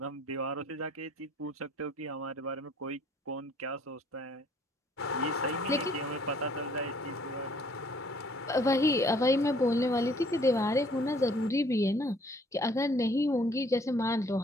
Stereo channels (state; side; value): normal; both; correlation 0.59